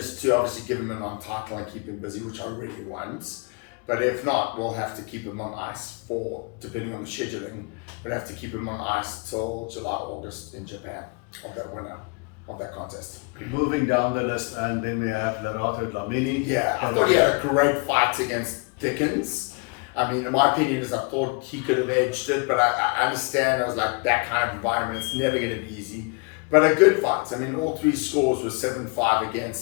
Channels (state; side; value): quieter; right; 31.9 dB